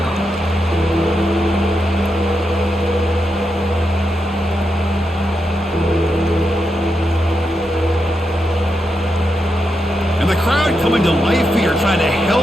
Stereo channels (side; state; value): both; normal; correlation 0.85